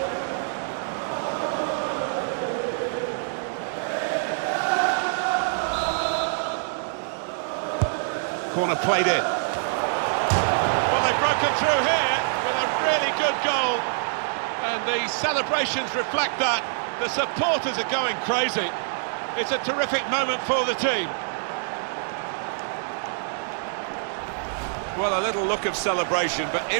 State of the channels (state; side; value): silent; left; 61 dB below the other